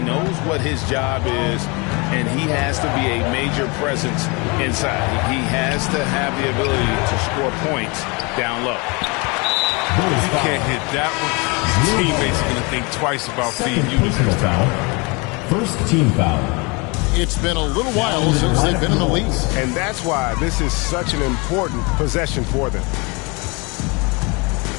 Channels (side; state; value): right; quieter; 29.0 dB